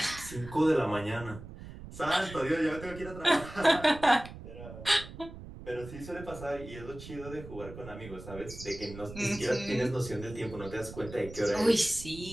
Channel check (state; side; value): noise; right; rumble, 13 dB below the sound